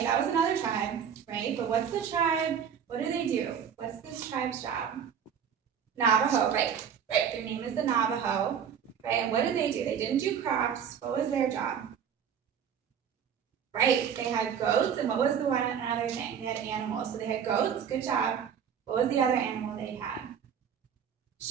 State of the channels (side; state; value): left; quieter; 7.9 dB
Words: That was another tribe, right? But what's the tribe? What do? What's this tribe's job? Navajo, right? Right, their name is the Navajo, right? And what did? They didn't do crops. What was their job? Right, they had goats, and what was the one other thing? They had animals. So they had goats, good job. What was the other animal they had?